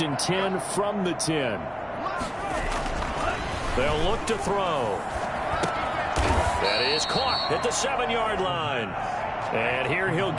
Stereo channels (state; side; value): identical; both; correlation 1.00